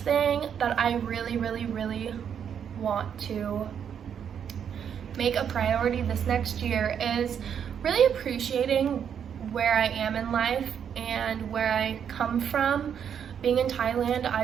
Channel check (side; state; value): left; quieter; 8.2 dB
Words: that I really want to make a priority this next year is really appreciating where I am in life and where I come from. Being in Thailand,